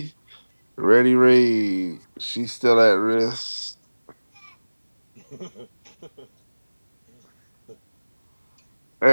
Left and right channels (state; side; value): inverted; both; correlation -1.00